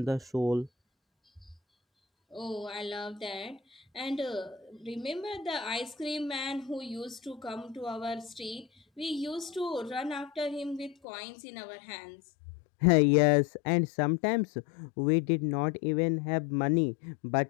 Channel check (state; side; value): drops out; right; at 11.0 s